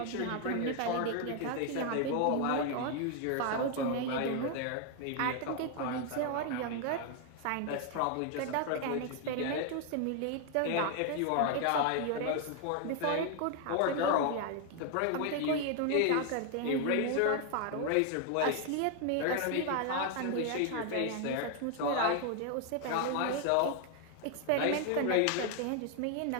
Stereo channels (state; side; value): different; both; correlation 0.00